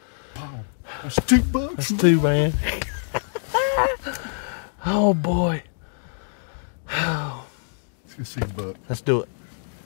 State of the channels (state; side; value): silent; right; digital silence